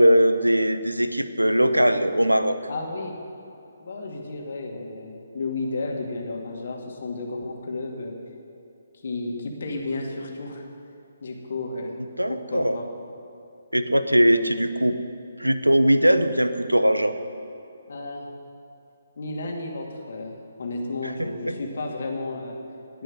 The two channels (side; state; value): both; inverted; correlation -0.94